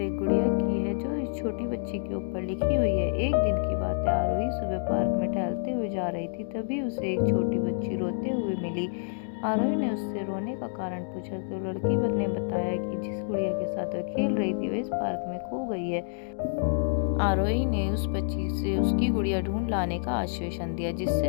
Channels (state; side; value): silent; right; digital silence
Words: गुड़िया की है जो इस छोटी बच्ची के ऊपर लिखी हुई है। एक दिन की बात है, आरोही सुबह पार्क में टहलते हुए जा रही थी। तभी उसे एक छोटी बच्ची रोते हुए मिली। आरोही ने उससे रोने का कारण पूछा तो लड़की ने बताया कि जिस गुड़िया के साथ वह खेल रही थी वह इस पार्क में खो गई है। आरोही ने उस बच्ची से उसकी गुड़िया ढूंढ लाने का आश्वासन दिया,